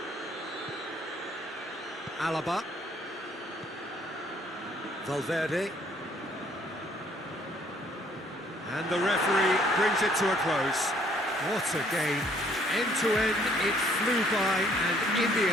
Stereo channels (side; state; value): both; normal; correlation 0.63